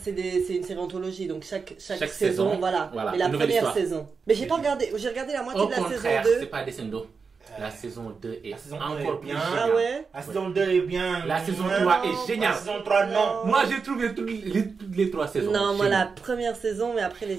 une série anthologie, donc chaque Chaque saison, saison, voilà. voilà, Mais la une nouvelle première histoire. saison. Mais j'ai regardé la moitié Au de la saison contraire, 2. c'est pas descendo. La saison 2 est La saison encore 2 plus est bien. géniale. Ah ouais? La saison 2 est bien. La saison Non, 3 est géniale. La saison 3, non. Moi, j'ai trouvé toutes les 3 saisons. Non, moi la géniales. première saison, mais après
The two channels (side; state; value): left; quieter; 5.2 dB